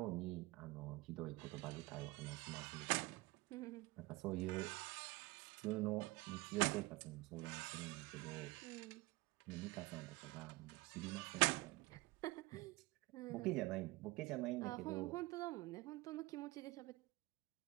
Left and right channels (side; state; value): left; quieter; 21.7 dB